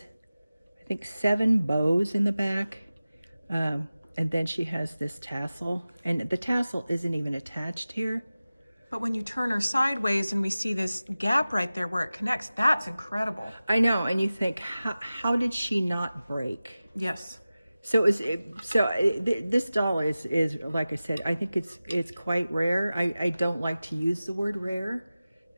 I think, 7 bows in the back. And then she has this tassel, and the tassel isn't even attached here. But when you turn her sideways and we see this gap right there where it connects, that's incredible. I know, and you think, how did she not break? Yes. So this doll is like I said, I think it's quite rare. I don't like to use the word rare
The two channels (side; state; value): both; inverted; correlation -0.96